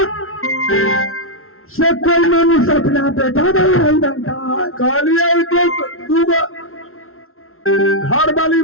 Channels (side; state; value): right; late; 0.62 ms